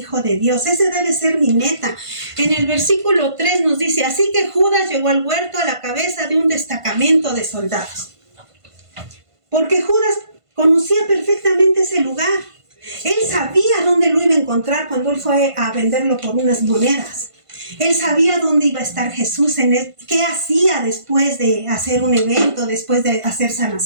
de Dios. Ese debe ser mi meta. En el versículo 3 nos dice, así que Judas llegó al huerto a la cabeza de un destacamento de soldados. Porque Judas conocía perfectamente ese lugar. Él sabía dónde lo iba a encontrar cuando él fue a venderlo por unas monedas. Él sabía dónde iba a estar Jesús, qué hacía después de hacer un evento, después de hacer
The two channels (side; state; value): left; late; 1.5 ms